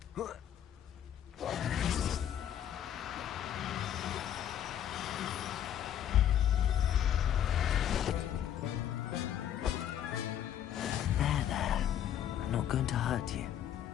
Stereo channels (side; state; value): right; quieter; 10.2 dB